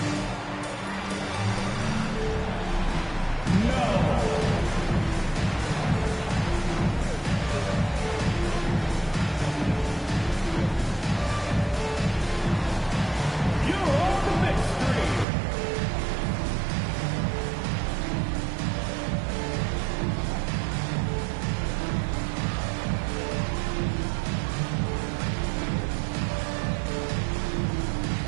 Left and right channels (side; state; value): left; drops out; at 15.2 s